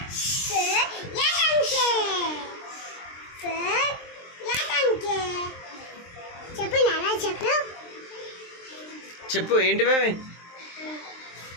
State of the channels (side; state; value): right; late; 23 ms